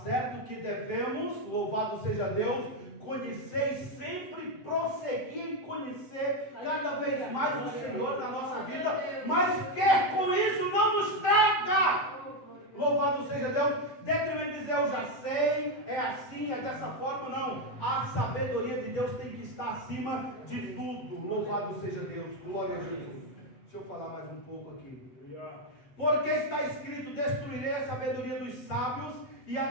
certo que devemos, louvado seja Deus, conhecer e sempre prosseguir em conhecer cada vez mais o Senhor na nossa vida, mas quer com isso não nos traga. Louvado seja Deus. Dentro de dizer eu já sei, é assim, é dessa forma, não. A sabedoria de Deus tem que estar acima de tudo. Louvado seja Deus, glória a Jesus. Deixa eu falar mais um pouco aqui. Porque está escrito: destruirei a sabedoria dos sábios e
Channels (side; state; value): right; late; 7.8 ms